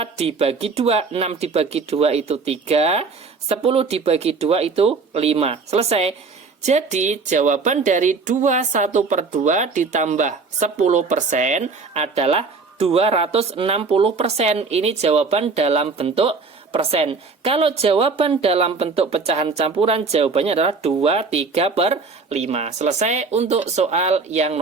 dibagi 2. 6 dibagi 2 itu 3, 10 dibagi 2 itu 5. Selesai. Jadi jawaban dari 2 1 per 2 ditambah 10% adalah 260%. Ini jawaban dalam bentuk persen. Kalau jawaban dalam bentuk pecahan campuran, jawabannya adalah 2 3 per 5. Selesai untuk soal yang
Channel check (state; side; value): quieter; left; 4.5 dB